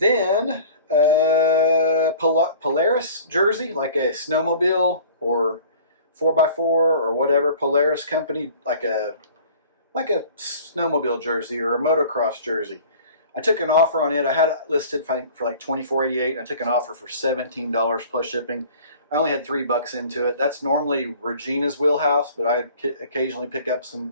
Polaris jersey, like a snowmobile or 4x4 or whatever, Polaris company, like a snowmobile jersey or a motocross jersey. I took an offer on it. I had it listed for like $24.88. I took an offer for $17 plus shipping. I only had $3 into it. That's normally Regina's wheelhouse, but I occasionally pick up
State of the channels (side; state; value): both; inverted; correlation -0.46